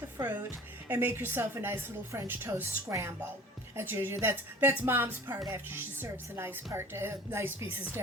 the fruit and make yourself a nice little French toast scramble. That's Mom's part after she serves the nice pieces to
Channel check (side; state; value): both; normal; correlation 0.43